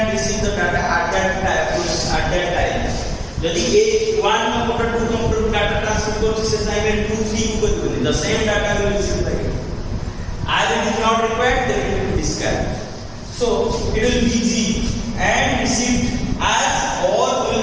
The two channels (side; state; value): both; identical; correlation 1.00